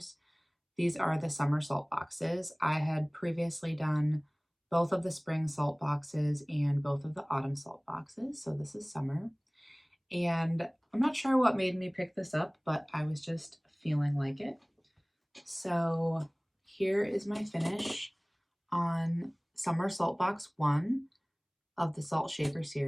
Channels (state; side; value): identical; both; correlation 1.00